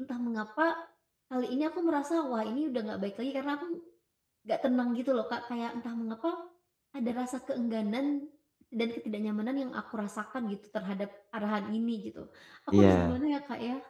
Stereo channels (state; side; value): identical; both; correlation 1.00